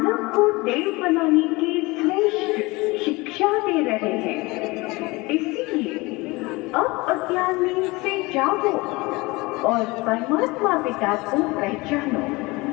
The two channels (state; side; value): quieter; right; 23.3 dB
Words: को देव बनाने की श्रेष्ठ शिक्षा दे रहे हैं। इसीलिए अब अज्ञान में से जागो और परमात्मा पिता को पहचानो।